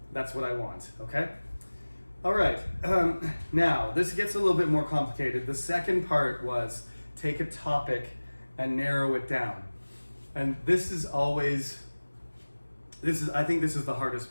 what I want, okay? All right, now this gets a little bit more complicated. The second part was take a topic and narrow it down. And I think this is the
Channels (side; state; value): both; inverted; correlation -1.00